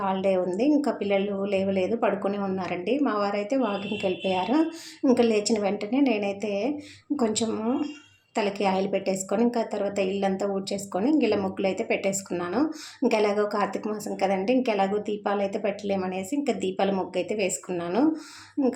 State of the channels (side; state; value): both; identical; correlation 1.00